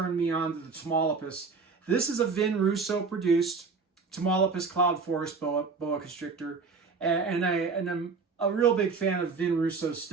me on to the Tamaulipas. This is a Vin Russo produced Tamaulipas Cloud Forest boa constrictor, and I'm a real big fan of Vin Russo's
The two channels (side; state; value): left; quieter; 4.7 dB